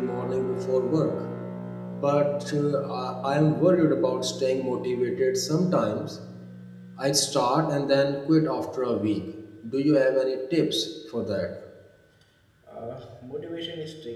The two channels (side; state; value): both; identical; correlation 1.00